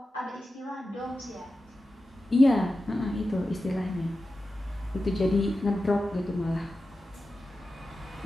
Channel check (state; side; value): normal; both; correlation 0.93